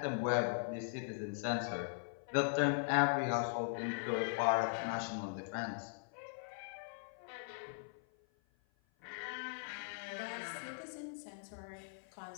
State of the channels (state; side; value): silent; right; 51 dB below the other